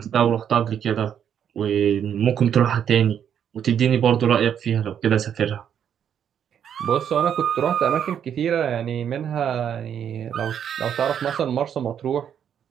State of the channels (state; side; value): quieter; left; 8.8 dB